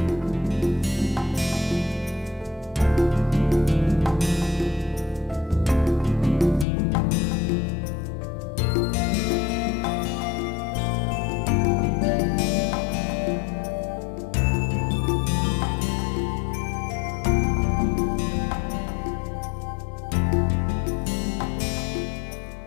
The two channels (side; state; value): right; drops out; at 6.7 s